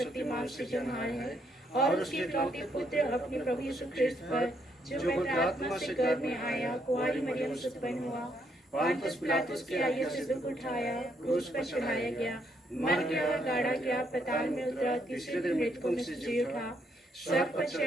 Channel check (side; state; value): both; normal; correlation 0.74